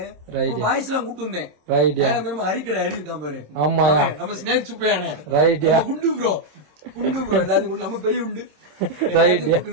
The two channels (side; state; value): left; late; 27 ms